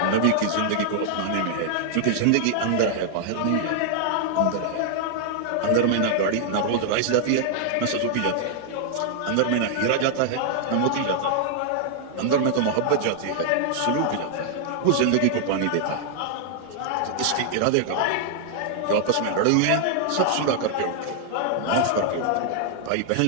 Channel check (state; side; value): different; both; correlation 0.00